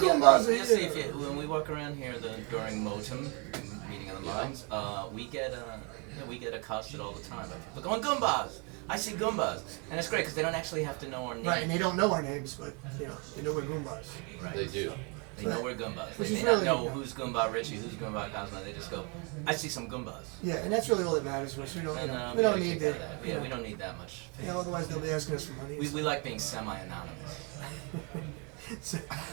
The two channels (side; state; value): left; quieter; 33.2 dB